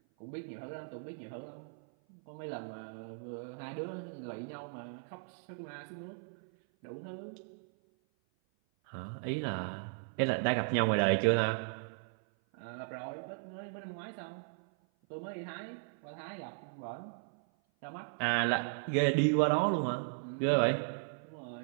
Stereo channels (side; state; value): left; silent; 53 dB below the other